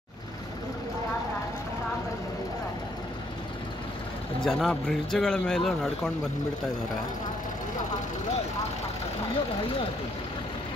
ಜನ ಬ್ರಿಡ್ಜ್ಗಳ ಮೇಲೂ ನಡ್ಕೊಂಡು ಬಂದ್ಬಿಡ್ತಾ ಇದ್ದಾರೆ.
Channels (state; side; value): normal; both; correlation 0.69